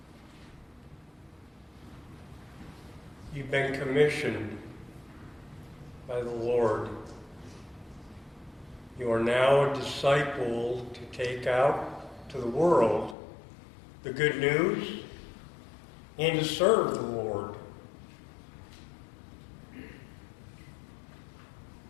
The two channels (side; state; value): right; drops out; at 13.2 s